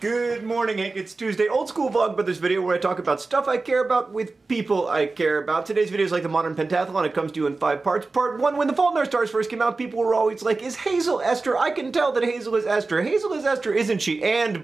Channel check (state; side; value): quieter; left; 3.7 dB